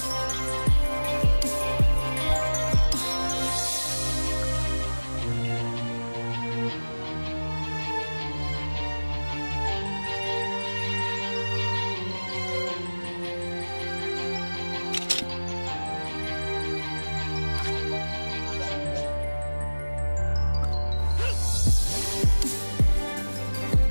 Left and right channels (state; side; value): inverted; both; correlation -1.00